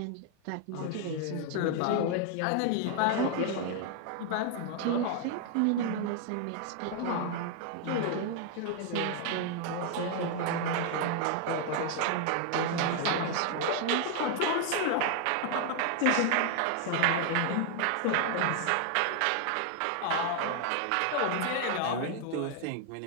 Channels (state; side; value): different; both; correlation 0.00